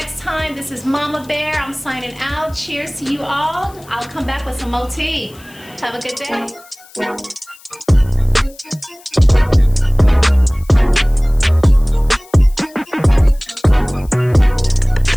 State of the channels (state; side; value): noise; left; hiss, 25 dB below the sound